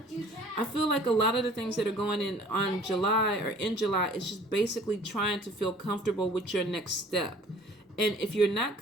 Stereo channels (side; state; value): both; normal; correlation 0.52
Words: I feel like a lot of the things that are going in on July or in July is just basically trying to feel comfortable with your next step. And if you're not